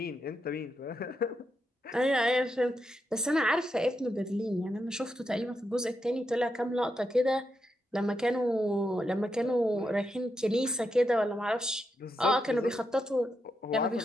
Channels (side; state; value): both; normal; correlation 0.84